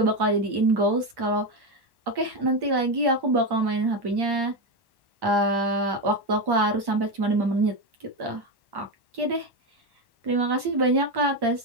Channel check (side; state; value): left; late; 1.1 ms